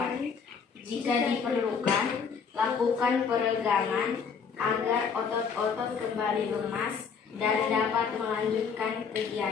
Jika diperlukan, lakukan peregangan agar otot-otot kembali lemas dan dapat melanjutkan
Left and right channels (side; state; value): right; quieter; 6.1 dB